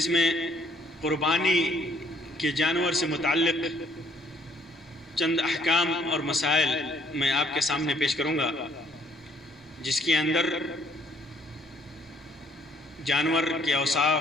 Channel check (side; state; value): both; normal; correlation 0.64